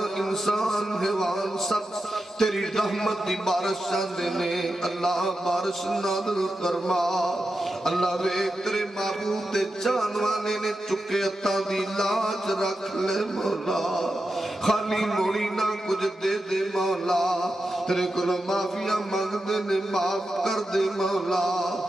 انسان حیوان سب تیری رحمت دی بارش چاندے نے اللہ بارش نادل فرما اللہ وے تیرے معبود دے جانوانے نے چکے عطا دی لاج رکھ لے مولا خالی موڑی نہ کچھ دے دے مولا تیرے کو معافیہ مانگ دے نے معاف کر دے مولا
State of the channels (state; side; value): normal; both; correlation 0.89